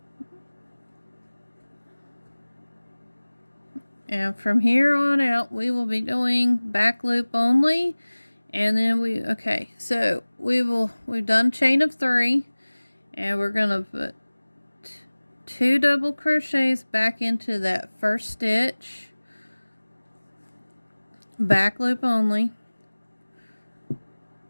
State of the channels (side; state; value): both; inverted; correlation -1.00